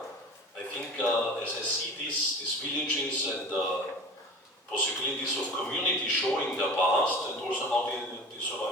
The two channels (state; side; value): normal; both; correlation 0.37